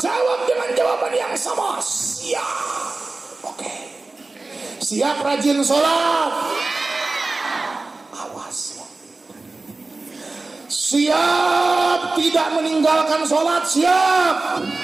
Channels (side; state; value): left; quieter; 3.4 dB